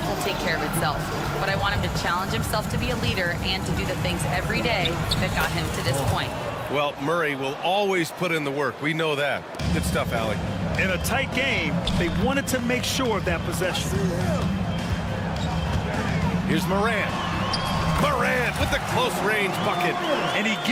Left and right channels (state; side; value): identical; both; correlation 1.00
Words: will take care of itself. But I want him to challenge himself to be a leader and to do the things every day that got him to this point. Well, Murray will always put in the work. We know that. Good stuff, Allie. In a tight game, they wanted to make sure of that possession. Here's Morant. Morant with the close-range bucket. And he